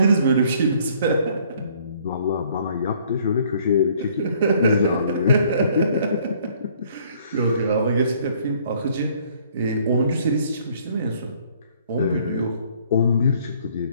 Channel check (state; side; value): inverted; both; correlation -0.60